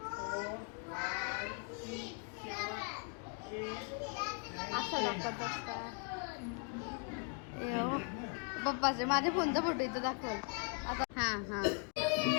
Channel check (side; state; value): right; quieter; 39.8 dB